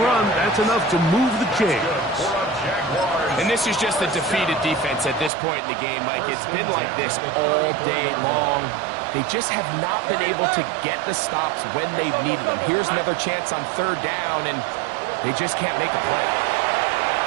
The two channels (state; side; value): drops out; left; at 5.3 s